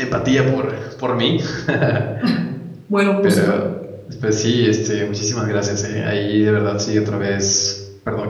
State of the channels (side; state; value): both; identical; correlation 1.00